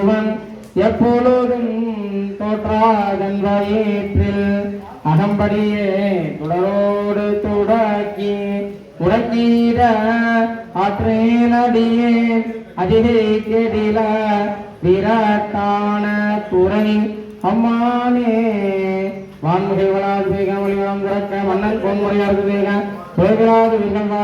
எப்பொழுதும் தோற்றாதன் வயிற்றில் அகம்படியே துடரோடு துடக்கி உடக்கீர ஆற்றேனடியே அதிகை கெடில விரட்டான துறை அம்மானே வான்முறை வளாது வேக மொழிவளம் திறக்க மன்னன் பொன்முறையாவது வேக சுயவிராது வில்லம்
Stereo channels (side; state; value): both; identical; correlation 1.00